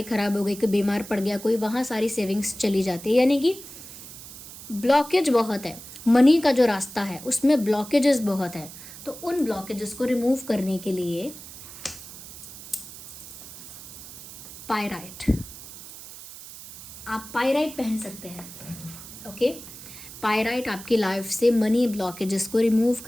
ख़राब हो गई, कोई बीमार पड़ गया कोई, वहाँ सारी सेविंग्स चली जाती है। यानी कि ब्लॉकेज बहुत है, मनी का जो रास्ता है उसमें ब्लॉकेजेस बहुत है। तो उन ब्लॉकेजेस को रिमूव करने के लिए पायराइट, आप पायराइट पहन सकते हैं, ओके। पायराइट आपकी लाइफ से मनी ब्लॉकेजेस को रिमूव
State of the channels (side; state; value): right; noise; hiss, 14 dB below the sound